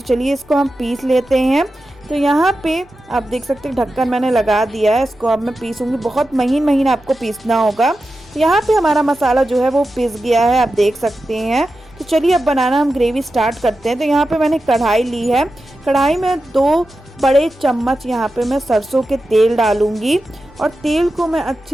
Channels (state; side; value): normal; both; correlation 0.92